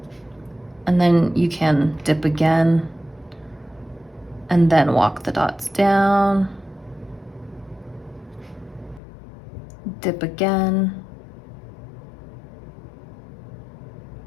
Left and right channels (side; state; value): right; drops out; at 9.0 s